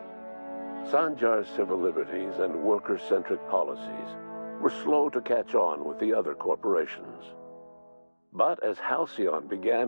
Sanjar's civil liberties and worker-centric policies were slow to catch on with the other corporations. But as Halcyon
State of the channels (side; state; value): both; inverted; correlation -1.00